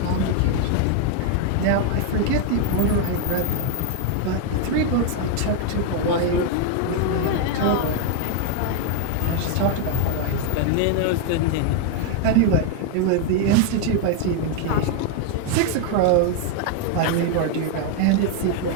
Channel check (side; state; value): both; different; correlation 0.00